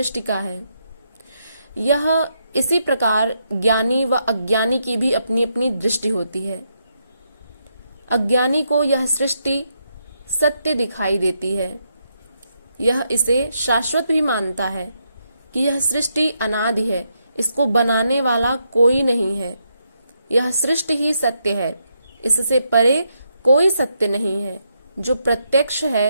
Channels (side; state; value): both; inverted; correlation -0.80